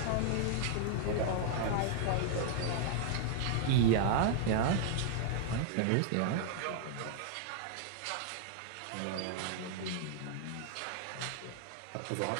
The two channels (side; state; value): both; different; correlation -0.01